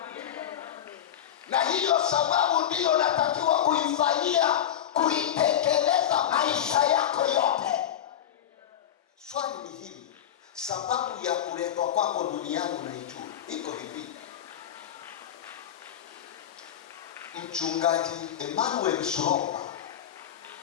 Na hiyo sababu ndiyo natakiwa kuifanyia, kuitekeleza maisha yako yote. Swali ni hili, sababu ya kuletwa kwako duniani unaijua? Iko hivi. Mchungaji Emmanuel Shuromba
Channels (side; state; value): right; quieter; 10.3 dB